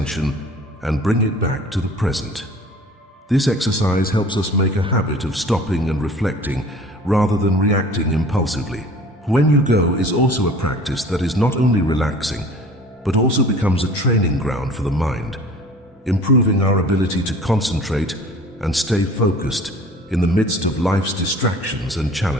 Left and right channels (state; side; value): normal; both; correlation 0.46